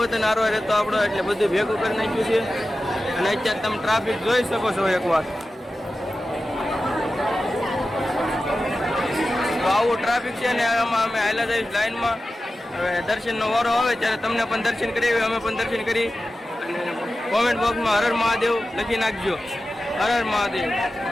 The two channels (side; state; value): both; normal; correlation 0.93